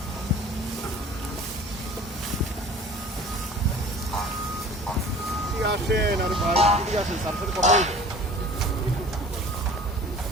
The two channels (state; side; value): normal; both; correlation 0.44